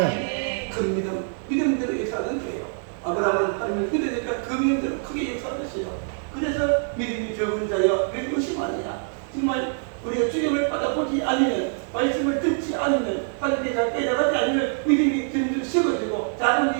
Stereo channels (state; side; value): silent; left; 62 dB below the other